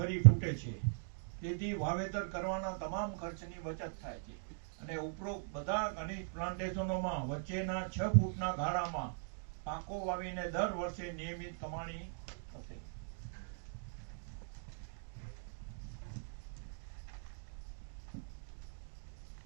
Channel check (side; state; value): left; silent; digital silence